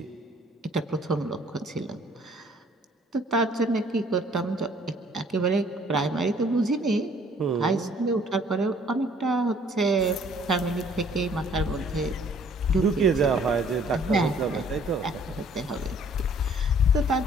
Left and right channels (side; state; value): both; normal; correlation 0.58